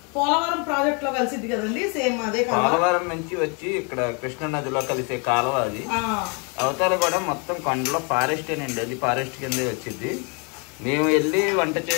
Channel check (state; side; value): quieter; right; 34.9 dB